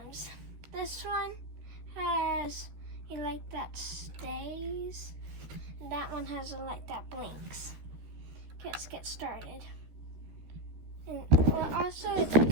This one has a light that stays, and that one has a light that blinks. Okay, let's get started. And also it's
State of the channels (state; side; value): late; left; 13 ms